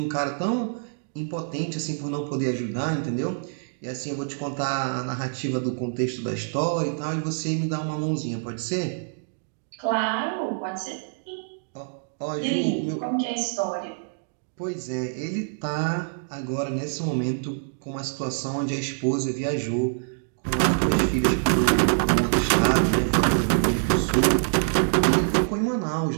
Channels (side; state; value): left; silent; digital silence